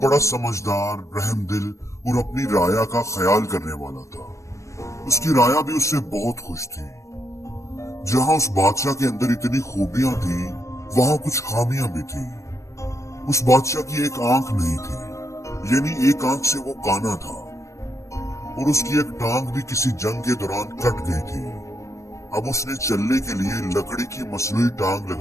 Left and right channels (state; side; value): late; right; 0.15 ms